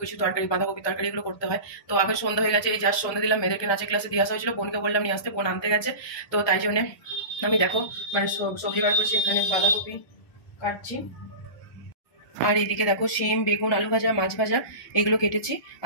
কিছু তরকারি, বাঁধাকপি তরকারি এগুলো করতে হয়। তো আগে সন্ধ্যা হয়ে গেছে, এই জাস্ট সন্ধ্যা দিলাম। মেয়েদেরকে নাচের ক্লাসে দিয়ে আসা হয়েছিল, বোনকে বললাম নিয়ে আসতে, বোন আনতে গেছে। তো তাই জন্যে আমি দেখো মানে সবজি বার করছি, এখানে বাঁধাকপি কাটছি, আর এইদিকে দেখো শিম, বেগুন, আলু ভাজা, মাছ ভাজা এগুলো কেটেছি।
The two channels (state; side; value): late; right; 1.2 ms